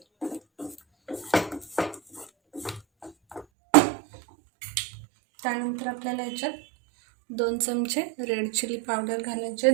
त्यानंतर आपल्याला याच्यात 2 चमचे रेड चिली पावडर घालायचे.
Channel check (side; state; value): left; drops out; at 3.5 s